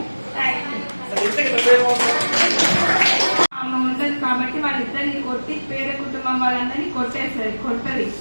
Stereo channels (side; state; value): both; inverted; correlation -1.00